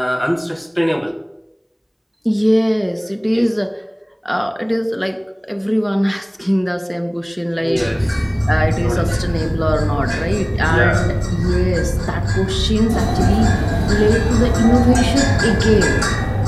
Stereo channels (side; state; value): both; identical; correlation 1.00